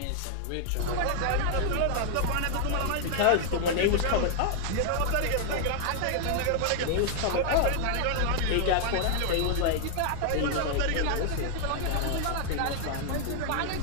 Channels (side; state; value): both; different; correlation 0.00